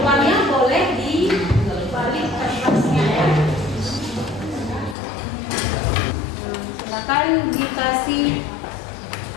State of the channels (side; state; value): right; drops out; at 5.0 s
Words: boleh dibalik kertasnya ya. Silakan dikasih